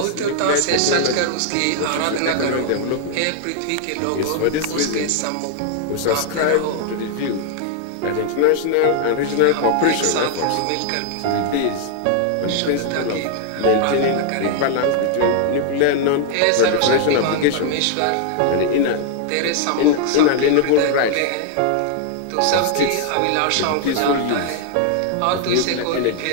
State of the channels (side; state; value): both; different; correlation 0.00